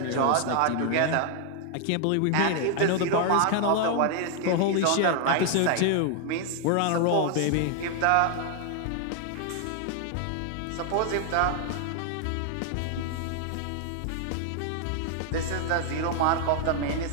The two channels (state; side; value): different; both; correlation 0.00